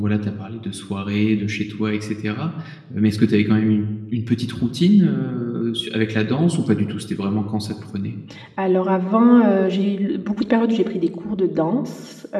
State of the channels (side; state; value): both; identical; correlation 1.00